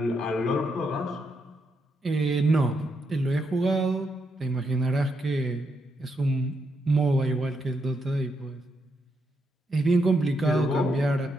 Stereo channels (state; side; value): normal; both; correlation 0.80